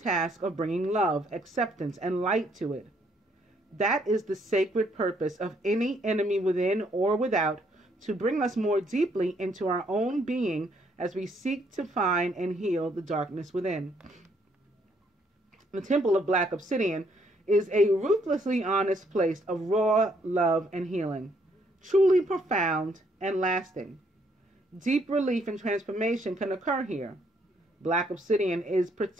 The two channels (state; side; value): normal; both; correlation 0.69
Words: of bringing love, acceptance, and light to it. That is the sacred purpose of any enemy within or without, to bring us more deeply into our own being as we seek to find and heal the darkness within. The Temple of Black Obsidian is a ruthlessly honest place of raw love and healing, truly profound and lasting. Deep relief and transformation can occur here. Black obsidian is